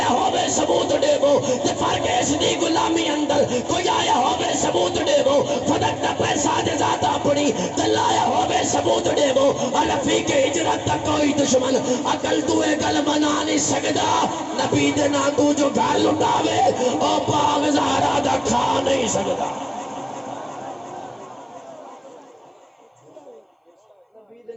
ہوئے ثبوت دے وہ، تے فرق اس دی غلامی اندر کوئی آیا ہوئے ثبوت دے وہ، فدق دا پیسہ دے ذات اپنی دلایا ہوئے ثبوت دے وہ، اور رفیق ہجرت تک کوئی دشمن عقل تو گل بنا نہیں سکتا، نبی دے نا تو جو گھر لٹاوے او باغ زہرا دا کھا نہیں سکتا۔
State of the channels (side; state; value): both; identical; correlation 1.00